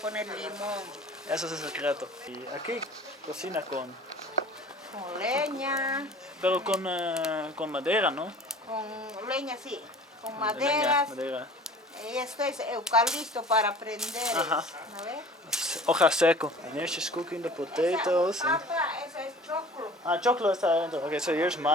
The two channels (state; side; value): normal; both; correlation 0.45